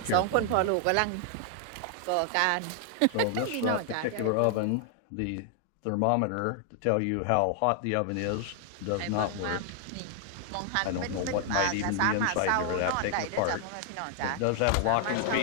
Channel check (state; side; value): different; both; correlation 0.00